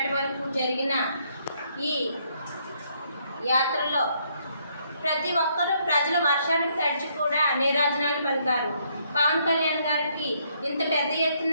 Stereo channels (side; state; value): both; inverted; correlation -0.71